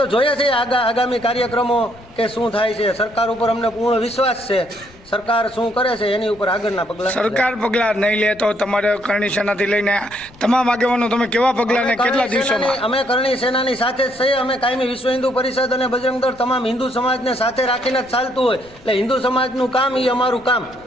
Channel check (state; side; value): noise; left; rumble, 25 dB below the sound